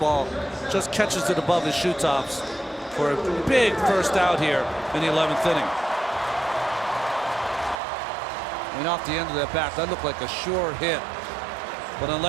Just catches it above his shoe tops for a big first out here in the 11th inning. And off the end of that bat, that looked like a sure hit. But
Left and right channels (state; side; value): drops out; left; at 7.8 s